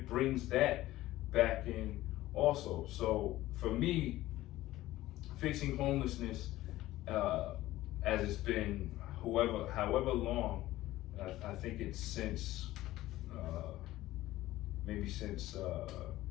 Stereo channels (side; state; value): right; quieter; 16.1 dB